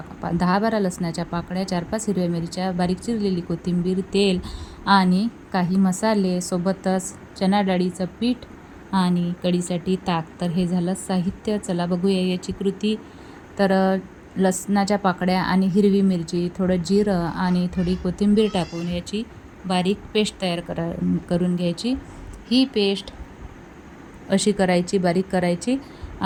10-12 लसणाच्या पाकळ्या, 4-5 हिरव्या मिरच्या, बारीक चिरलेली कोथिंबीर, तेल आणि काही मसाले, सोबतच चणा डाळीचं पीठ आणि कढीसाठी ताक. तर हे झालं साहित्य. चला बघूया याची कृती. तर लसणाच्या पाकळ्या आणि हिरवी मिरची, थोडं जिरं आणि थोडी कोथिंबीर टाकून याची बारीक पेस्ट तयार करून घ्यायची. ही पेस्ट अशी करायची, बारीक करायची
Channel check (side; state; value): both; identical; correlation 1.00